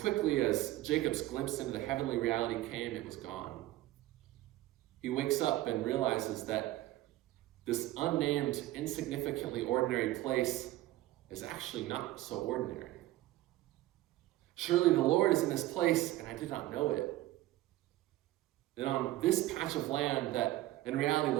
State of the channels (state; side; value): quieter; left; 16.1 dB